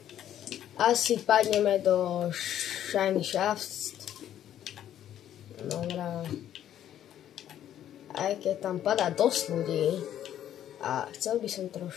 Asi padneme do Shiny Shafts. Dobrá. Aj keď tam padá dosť ľudí a chcel by som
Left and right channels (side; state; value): right; quieter; 11.0 dB